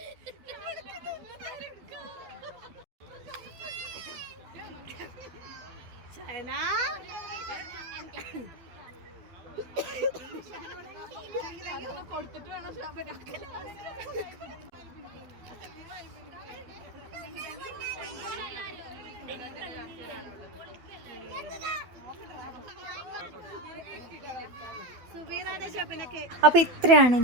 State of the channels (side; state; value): left; late; 12 ms